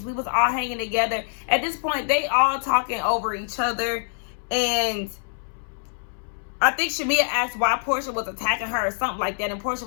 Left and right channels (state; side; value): silent; right; 62 dB below the other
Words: We was all hanging together. At this point, they all talking over each other. And I think Shamia asked why Portia was attacking her or something like that. And Portia